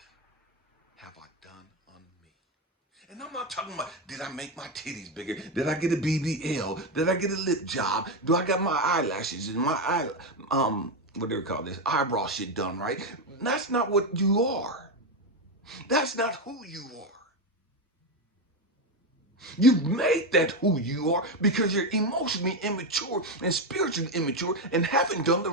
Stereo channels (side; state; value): both; normal; correlation 0.10